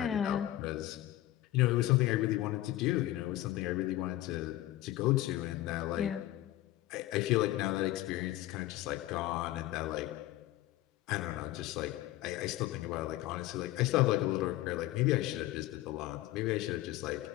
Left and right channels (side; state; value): right; quieter; 15.6 dB